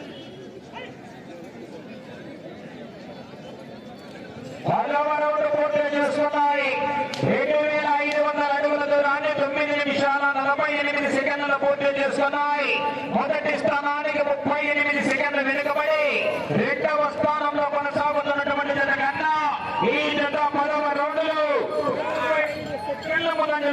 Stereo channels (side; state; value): both; identical; correlation 1.00